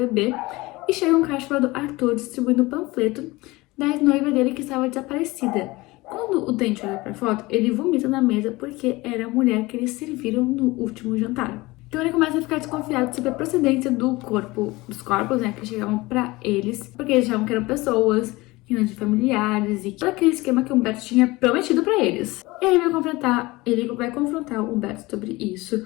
e chega um cara chamado Arthur distribuindo um panfleto da noiva dele que estava desaparecida. Quando o Dante olha pra foto, ele vomita na mesa porque era a mulher que eles serviram no último jantar. Então ele começa a ficar desconfiado sobre a procedência dos corpos, né, que chegavam pra eles, porque eles achavam que eram pessoas, que não de familiares e todo aquele esquema que o Humberto tinha prometido pra eles. E aí ele vai confrontar o Humberto sobre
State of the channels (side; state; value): right; quieter; 21.3 dB